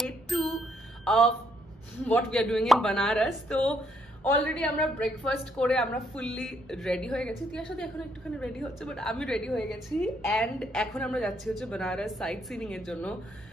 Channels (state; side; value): normal; both; correlation 0.72